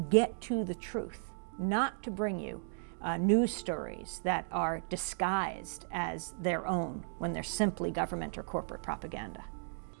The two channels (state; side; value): silent; left; digital silence